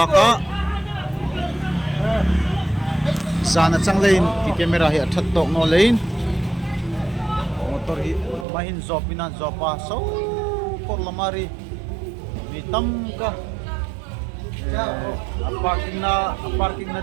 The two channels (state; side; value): drops out; left; at 8.5 s